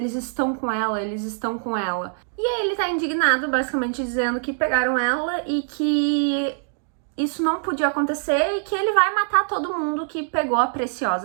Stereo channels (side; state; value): left; silent; digital silence